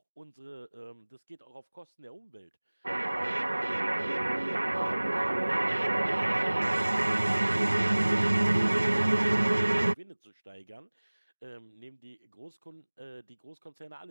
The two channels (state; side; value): inverted; both; correlation -1.00